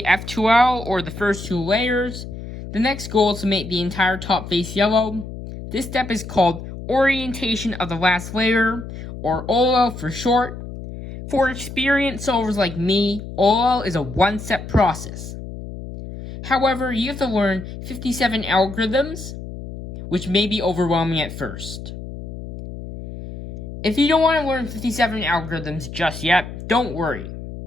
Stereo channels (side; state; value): left; noise; hum, 10 dB below the sound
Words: F2L or the first two layers, the next goal is to make the entire top face yellow. This step is called orientation of the last layer, or OLL for short. For experienced solvers like me, OLL is a one-step process. However, you have to learn 57 algorithms, which may be overwhelming at first. If you don't want to learn 57 algorithms just yet, don't worry.